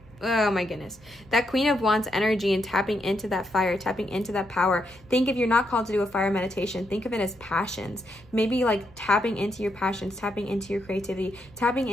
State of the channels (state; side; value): noise; left; hum, 27 dB below the sound